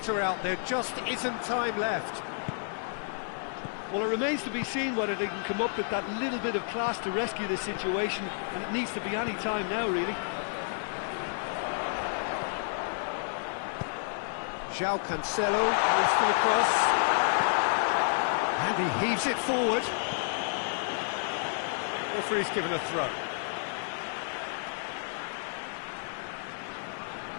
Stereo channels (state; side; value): silent; right; 57 dB below the other